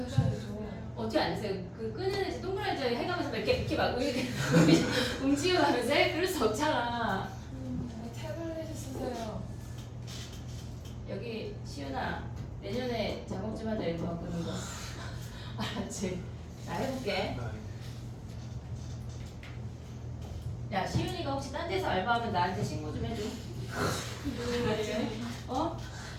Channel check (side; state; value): both; identical; correlation 1.00